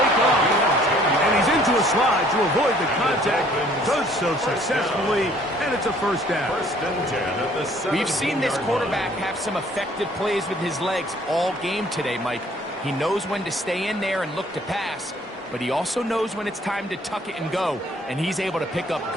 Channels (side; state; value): both; normal; correlation 0.58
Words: off. And he's into a slide to avoid the contact. Does so successfully, and it's a first down. First and 10 at the 17-yard We've seen this quarterback have some effective plays with his legs all game today, Mike. He knows when to stay in there and look to pass, but he also knows when it's time to tuck it and go, and he's able to pick up